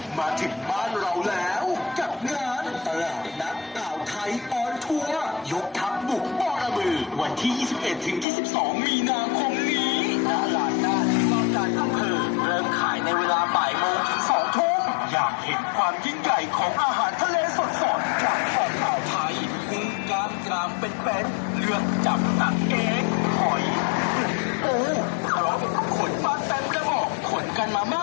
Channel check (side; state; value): right; drops out; at 8.2 s